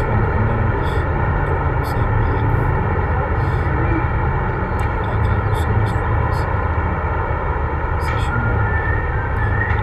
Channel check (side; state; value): both; identical; correlation 1.00